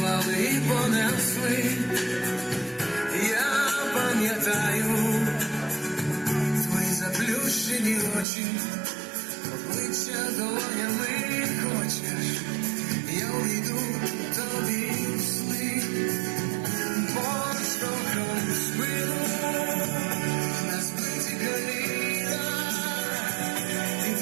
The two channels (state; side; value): drops out; left; at 8.2 s